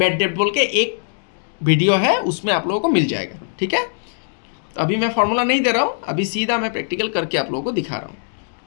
डेब्ट बोल के एक वीडियो है, उसमें आप लोगों को मिल जाएगा, ठीक है। तो अभी मैं फॉर्मूला नहीं दे रहा हूँ, अभी सीधा मैं प्रैक्टिकल करके आप लोगों को दिखा रहा हूँ।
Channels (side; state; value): right; silent; digital silence